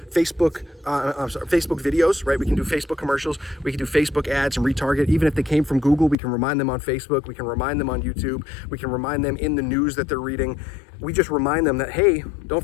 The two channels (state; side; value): drops out; right; at 6.2 s